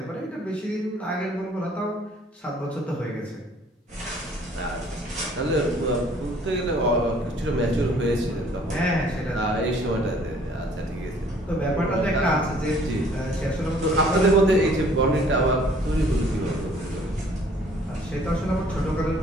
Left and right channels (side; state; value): both; normal; correlation 0.57